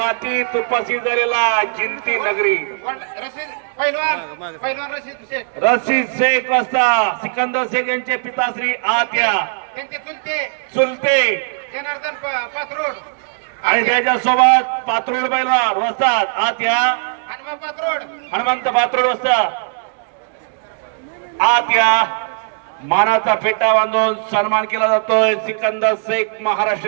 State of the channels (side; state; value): left; silent; digital silence